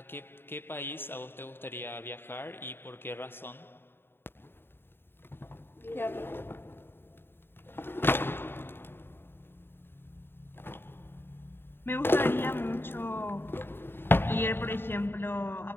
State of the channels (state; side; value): late; right; 0.11 ms